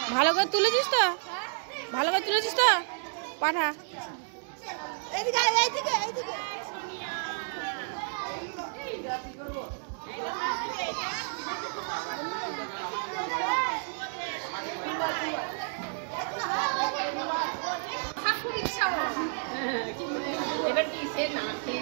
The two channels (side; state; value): left; silent; 57 dB below the other